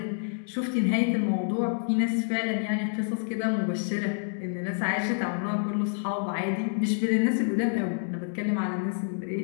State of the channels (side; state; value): right; silent; digital silence